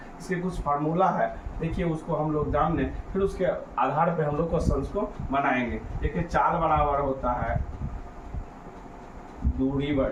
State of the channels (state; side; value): identical; both; correlation 1.00